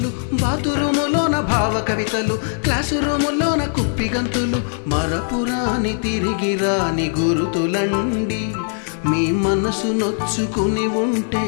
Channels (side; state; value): right; silent; digital silence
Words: బాతురూములోన భావ కవితలు, క్లాసు రూములోన కుప్పి గంతులు, మరపురాని తిరిగి రాని గురుతులండి. మీ మనసు నొచ్చుకుని ఉంటే